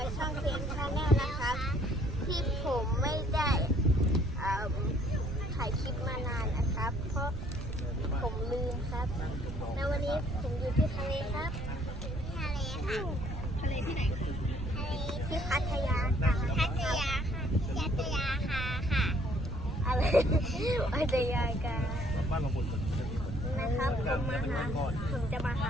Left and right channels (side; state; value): right; noise; rumble, 6 dB below the sound